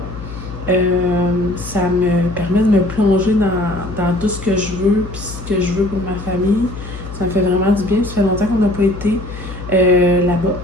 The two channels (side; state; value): left; noise; hum, 11 dB below the sound